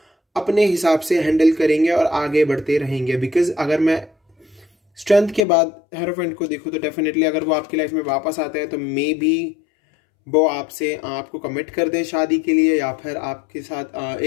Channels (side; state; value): right; drops out; at 5.5 s